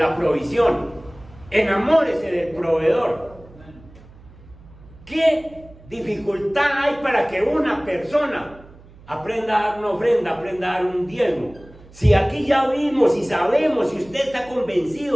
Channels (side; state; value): right; noise; hum, 23 dB below the sound